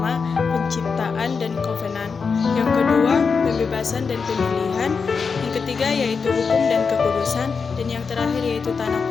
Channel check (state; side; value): quieter; right; 5.3 dB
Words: penciptaan dan kovenan. Yang kedua, pembebasan dan pemilihan. Yang ketiga yaitu hukum dan kekudusan. Dan yang terakhir yaitu tanah